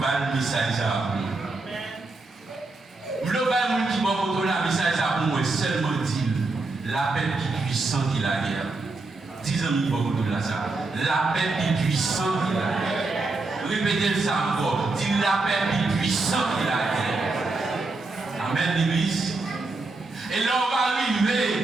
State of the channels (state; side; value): quieter; left; 3.4 dB